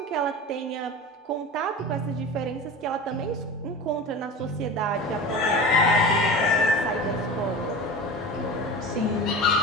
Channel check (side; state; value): both; normal; correlation 0.32